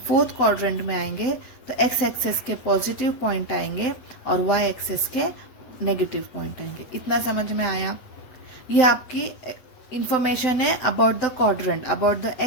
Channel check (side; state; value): right; late; 7.8 ms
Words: फोर्थ क्वाड्रेंट में आएंगे तो x एक्सेस के पॉजिटिव पॉइंट आएंगे और y एक्सेस के नेगेटिव पॉइंट आएंगे। इतना समझ में आया? ये आपकी इंफॉर्मेशन है about the quadrant, about the